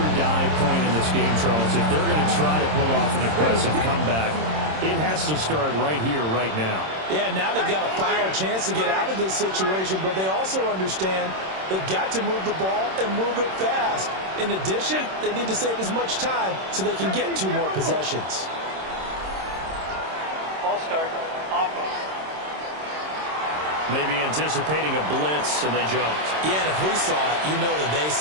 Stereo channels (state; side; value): late; left; 26 ms